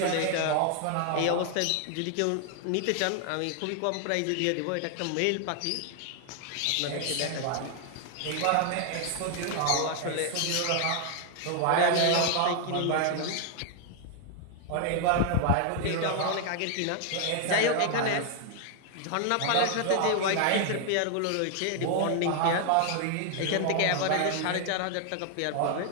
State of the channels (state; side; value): different; both; correlation 0.00